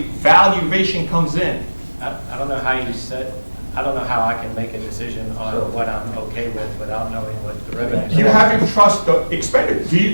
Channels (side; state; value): both; inverted; correlation -1.00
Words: comes in. I don't know how you said, I don't know how I can make a decision on what I'm okay with without knowing what the revenue. You have to trust the expenditure. Do you